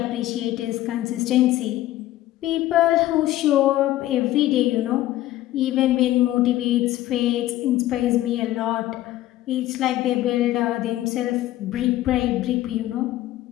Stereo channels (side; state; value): right; quieter; 14.8 dB